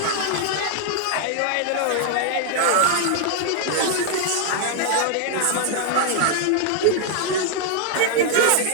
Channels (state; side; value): different; both; correlation 0.00